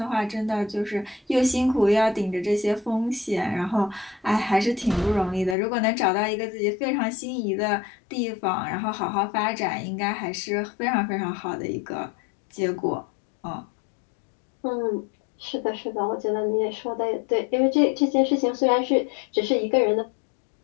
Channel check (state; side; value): drops out; right; at 5.6 s